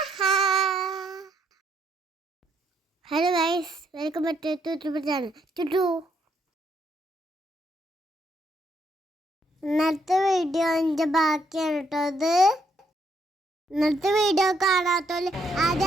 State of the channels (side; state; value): both; normal; correlation 0.73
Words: hello guys, welcome back to channel ചുട്ടു. ഇന്നത്തെ വീഡിയോ എൻ്റെ ബാക്കിയാണ് കേട്ടോ. ഇത് ഇന്നത്തെ വീഡിയോ കാണാത്തോല്